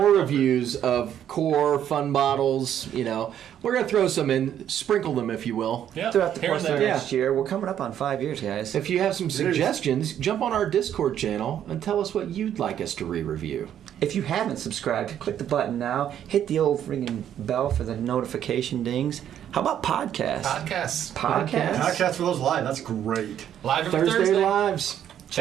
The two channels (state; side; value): quieter; left; 10.1 dB